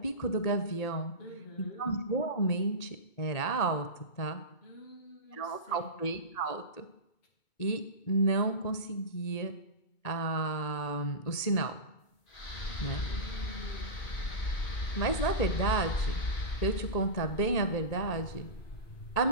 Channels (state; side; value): late; right; 2.2 ms